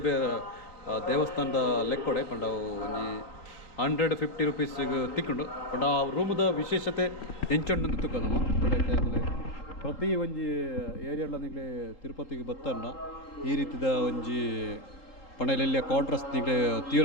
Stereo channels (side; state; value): right; late; 3.8 ms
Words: ದೇವಸ್ಥಾನದ ಲೆಕ್ಕೊಡೆ ಪಂಡ ಒಂಜಿ 150 ರೂಪೀಸ್ಗೆ ತಿಕ್ಕೊಂಡು ಪಂಡ ಆ ರೂಮದ ವಿಶೇಷತೆ ಹೆಂಚೊಂಡು ತುಕ್ಕದಮ್ಮ. ಪ್ರತಿ ಒಂಜಿ ಏರಿಯಾಲ ನಿಗಲೆ ತಿರುಪತಿಗೆ ಬತ್ತನ್ನ ಈ ರೀತಿದ ಒಂಜಿ ಪಂಡಲೆಲ್ಲ ಕ್ವಾರ್ಟರ್ಸ್ ನಿಗಲೆ ತೀರ